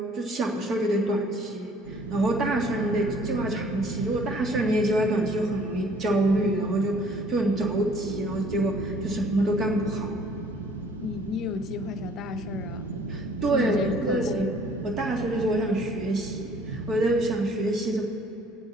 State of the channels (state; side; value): normal; both; correlation 0.57